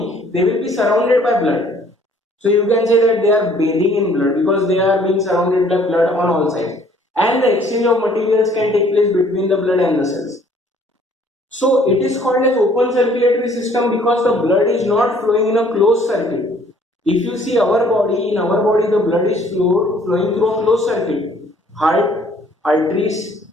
they will be surrounded by blood. So you can say that they are bathing in blood because they are being surrounded by blood on all sides, and the exchange of materials can take place between the blood and the cells. So it is called as open circulatory system because the blood is not flowing in a closed circuit. If you see our body, in our body the blood is flowing through a closed circuit. Heart, arteries,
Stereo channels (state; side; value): normal; both; correlation 0.58